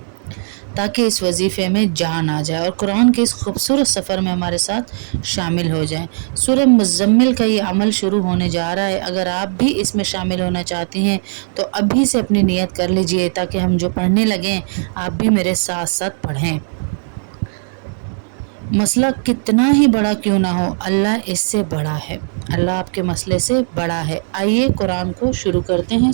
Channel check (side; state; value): left; silent; 68 dB below the other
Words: تاکہ اس وظیفے میں جان آ جائے اور قرآن کے اس خوبصورت سفر میں ہمارے ساتھ شامل ہو جائیں۔ سورہ مزمل کا یہ عمل شروع ہونے جا رہا ہے۔ اگر آپ بھی اس میں شامل ہونا چاہتی ہیں تو ابھی سے اپنی نیت کر لیجئے تاکہ ہم جو پڑھنے لگیں آپ بھی میرے ساتھ ساتھ پڑھیں۔ مسئلہ کتنا ہی بڑا کیوں نہ ہو، اللہ اس سے بڑا ہے، اللہ آپ کے مسئلے سے بڑا ہے۔ آئیے قرآن کو شروع کرتے ہیں،